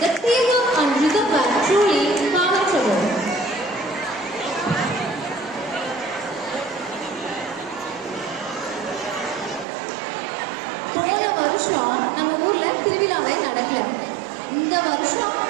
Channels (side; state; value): left; drops out; at 9.7 s